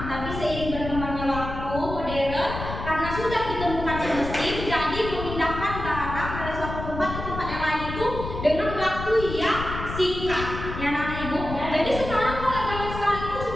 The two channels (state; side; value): noise; left; rumble, 7 dB below the sound